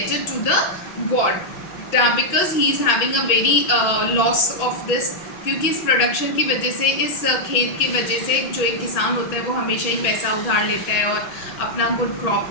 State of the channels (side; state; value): right; late; 6.0 ms